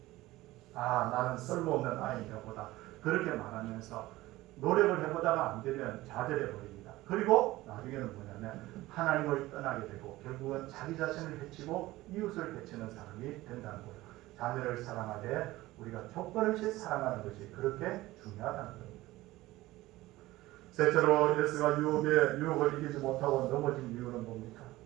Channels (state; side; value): quieter; left; 17.9 dB